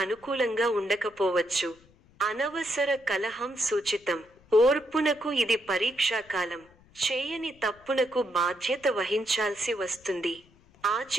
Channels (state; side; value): noise; left; rumble, 29 dB below the sound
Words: ఉండకపోవచ్చు. అనవసర కలహం సూచితం. ఓర్పునకు ఇది పరీక్షాకాలం. చేయని తప్పునకు బాధ్యత వహించాల్సి వస్తుంది.